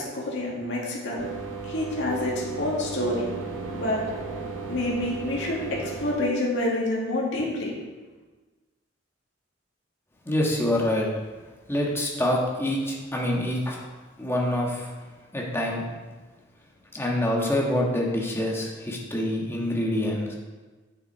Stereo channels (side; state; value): both; normal; correlation 0.48